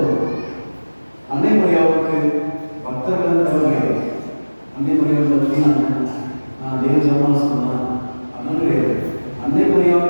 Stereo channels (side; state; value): both; inverted; correlation -1.00